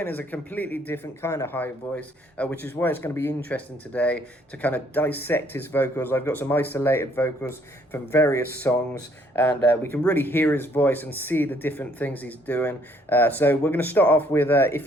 is a completely different kind of high voice, which is why it's going to be interesting today to kind of dissect his vocals. I've got some isolated vocals from various songs, and we can really hear his voice and see the different things he's doing. So we're going to start off with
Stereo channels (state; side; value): normal; both; correlation 0.65